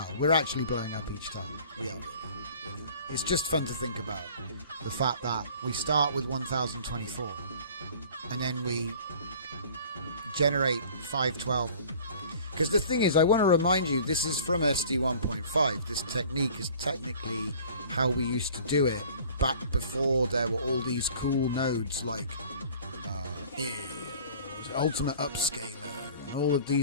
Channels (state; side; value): inverted; both; correlation -0.48